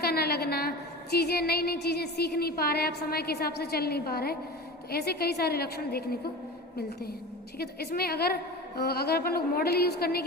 ना लगना, चीज़ें नई नई चीज़ें सीख नहीं पा रहे, आप समय के हिसाब से चल नहीं पा रहे, तो ऐसे कई सारे लक्षण देखने को मिलते हैं। ठीक है, तो इसमें अगर अपन लोग मॉडल यूज़ करने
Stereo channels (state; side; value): normal; both; correlation 0.32